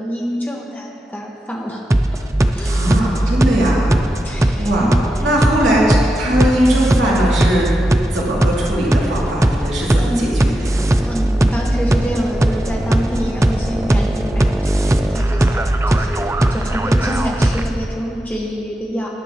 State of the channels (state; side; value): normal; both; correlation 0.89